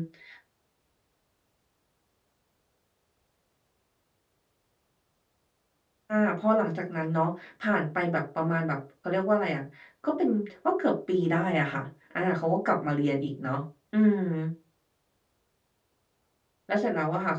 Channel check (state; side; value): identical; both; correlation 1.00